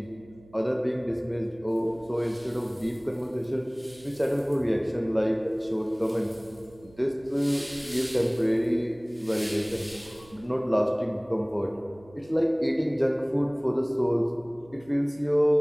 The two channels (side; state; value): right; noise; hum, 25 dB below the sound